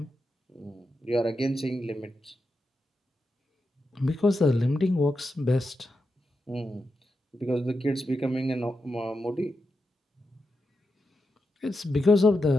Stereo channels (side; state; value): both; normal; correlation 0.87